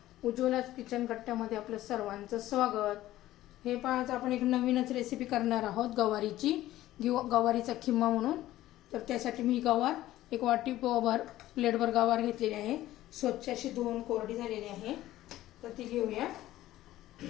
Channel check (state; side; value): quieter; right; 14.9 dB